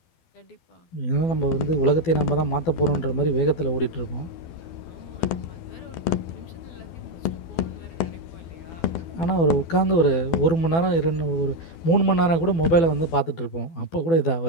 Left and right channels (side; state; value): right; late; 12 ms